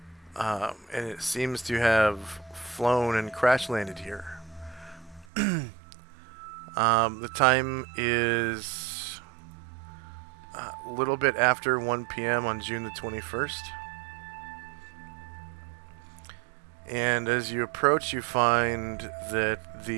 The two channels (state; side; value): drops out; left; at 5.2 s